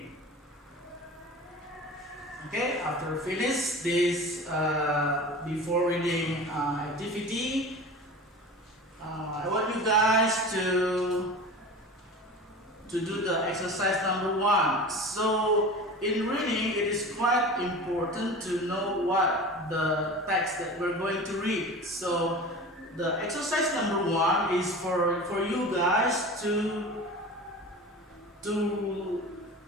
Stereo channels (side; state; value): both; normal; correlation 0.34